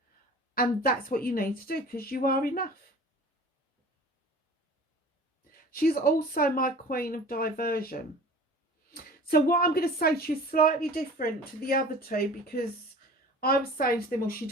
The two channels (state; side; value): normal; both; correlation 0.43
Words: And that's what you need to do, because you are enough. She's also my queen of diversion. So what I'm going to say to you is slightly different to the other two, because I was saying to them, well, she